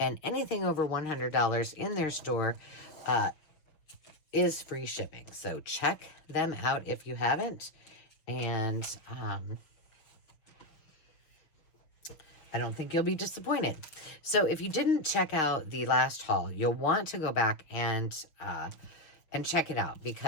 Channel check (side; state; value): right; late; 6.3 ms